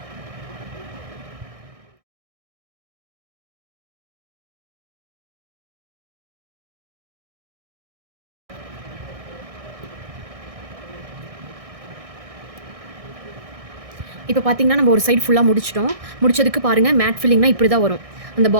இப்போ பார்த்தீங்கன்னா நம்ம ஒரு சைடு ஃபுல்லாக முடிச்சிட்டோம். முடிச்சதுக்கு பாருங்கள், மேட் ஃபில்லிங்னா இப்படி தான் வரும். அந்த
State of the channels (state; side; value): late; left; 1.6 ms